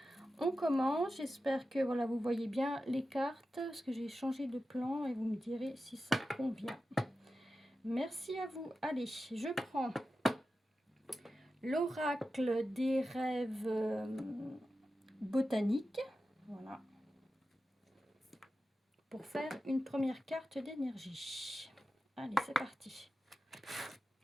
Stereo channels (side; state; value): both; normal; correlation 0.92